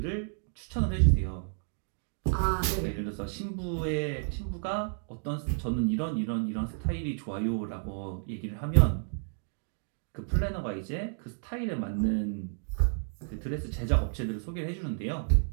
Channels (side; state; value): left; silent; digital silence